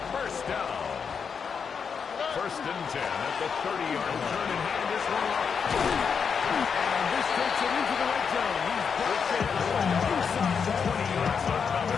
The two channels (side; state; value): right; quieter; 6.3 dB